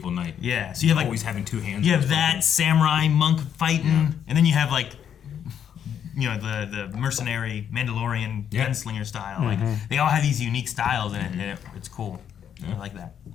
knight. Yeah. So you have like always having two hands. You have that samurai monk fighting, and then you have like the mercenary Mandalorian gunslinger style. Like they all have these unique styles, and it's cool. I like that.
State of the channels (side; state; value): right; quieter; 8.8 dB